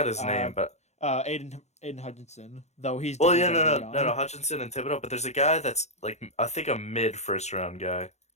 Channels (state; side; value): late; right; 0.32 ms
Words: his Uh, name, but Aiden Hutchinson, though he's well, definitely yeah, very no, young. Hutchinson and Thibodeau, but there's a guy that's like I think a mid first round guy